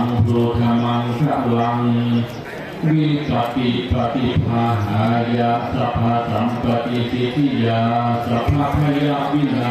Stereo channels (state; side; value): identical; both; correlation 1.00